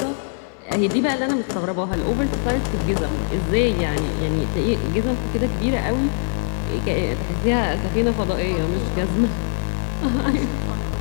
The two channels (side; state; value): right; silent; digital silence